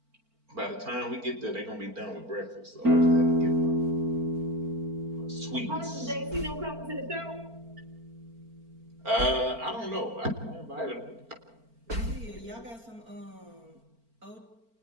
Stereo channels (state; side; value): late; left; 4.4 ms